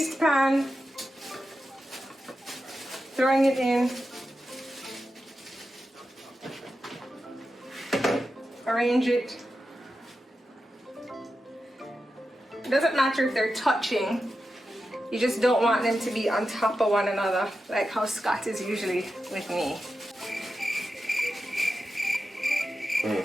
pan. Throwing it in. Arrange it. It doesn't matter if they're touching. You just don't want them to be on top of one another, like how Scott is usually with me.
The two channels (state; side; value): normal; both; correlation 0.90